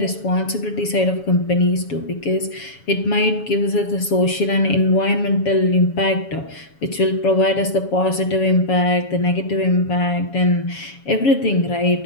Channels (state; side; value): late; right; 7.2 ms